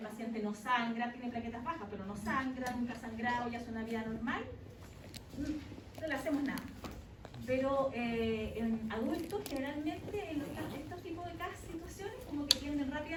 no sangra, tiene plaquetas bajas, pero no sangra, nunca ha sangrado y hace una vida normal, no le hacemos nada. Pero en adultos, generalmente, en estos tipos de situaciones, como que tienden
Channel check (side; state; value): both; identical; correlation 1.00